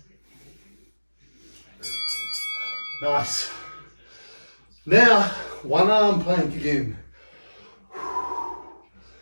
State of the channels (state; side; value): inverted; both; correlation -1.00